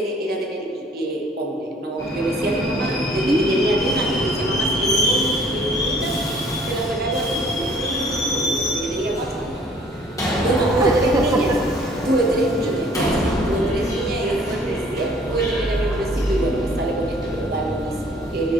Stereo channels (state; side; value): normal; both; correlation 0.57